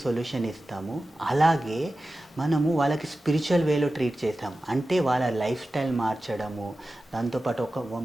సొల్యూషన్ ఇస్తాము. అలాగే మనము వాళ్ళకి స్పిరిచువల్ వేలో ట్రీట్ చేస్తాం. అంటే వాళ్ళ లైఫ్ స్టైల్ మార్చడము, దాంతోపాటు ఒక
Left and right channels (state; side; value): normal; both; correlation 0.94